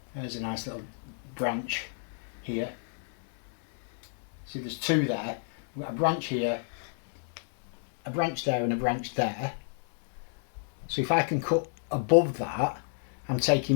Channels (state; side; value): silent; right; digital silence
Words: There's a nice little branch here. See, there's two there. We've got a branch here, a branch there and a branch there. So if I can cut above that, I'm